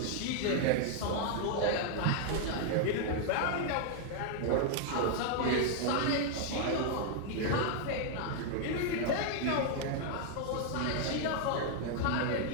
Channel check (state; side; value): different; both; correlation 0.00